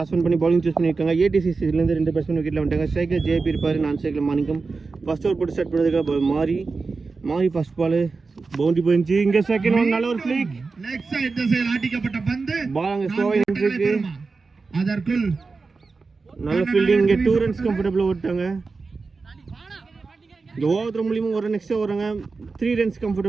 பண்ணி bowling choose பண்ணிருக்காங்க. ATCC ல இருந்து ரெண்டு பேட்ஸ்மேன் விக்கெட்ல வந்துட்டாங்க. ஸ்ட்ரைக்கர் JB இருப்பாரு, நான் ஸ்ட்ரைக்கர் மாணிக்கம். ஃபர்ஸ்ட் ஓவர் போட்டு ஸ்டார்ட் பண்ணதுக்கு மாரி ஃபர்ஸ்ட் பால் பவுண்டரி போயிடுச்சு. இங்க செகண்ட் ஒன் நல்ல ஒரு ஃபிளிக் லெக் சைடு திசையில் ஆட்டிக்கப்பட்ட பந்து பால் அங்க ஸ்லோவா நின்னுருக்கு. அதற்குள் நல்ல ஃபீல்டிங். இங்க 2 ரன்ஸ் கம்ஃபர்ட்டபிளா ஓட்டாங்க. இங்க ஓவர் மூலியமா ஒரு ரன் எக்ஸ்ட்ரா வராங்க. 3 ரன்ஸ்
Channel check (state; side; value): quieter; left; 4.2 dB